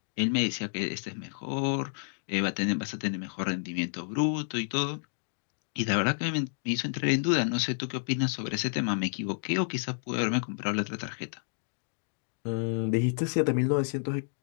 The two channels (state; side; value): silent; right; digital silence